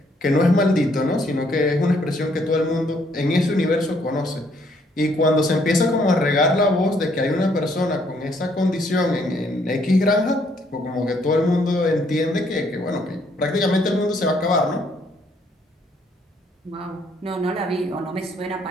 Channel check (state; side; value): normal; both; correlation 0.68